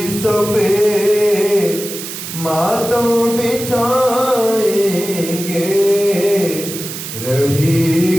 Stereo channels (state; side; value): noise; right; hiss, 8 dB below the sound